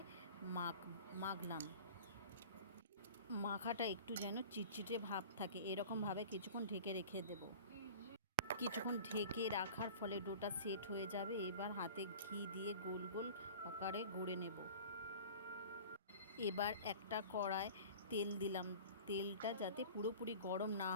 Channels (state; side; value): inverted; both; correlation -0.40